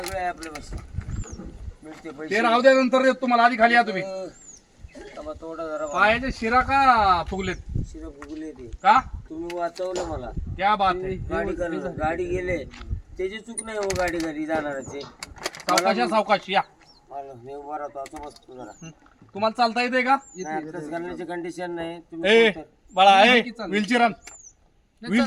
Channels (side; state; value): both; identical; correlation 1.00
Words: आहे आपल्या बस मिळते ते पैसे. राहू द्या नंतर देतो तुम्हाला. आधी खाली या तुम्ही. तबा थोडा जरा पायाचे शिरा का फुगलेत शिरं फुगले ते. का? तुम्ही वाचवलं मला. क्या बात आहे. गाडी गेले त्याची चूक नाही हो. गाडी घरी जाणारचे. सावकाश या. मला मी उभा राहतो असं बसतो जरा. तुम्हाला चालता येते का? आताच करण्याची कंडिशन नाही. तुम्ही ए कोणतं बाळा ए व्हीलचेअर आण.